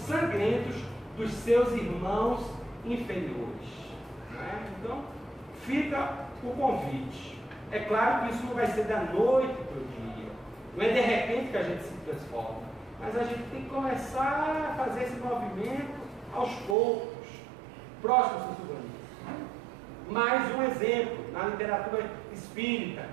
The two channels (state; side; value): drops out; left; at 16.8 s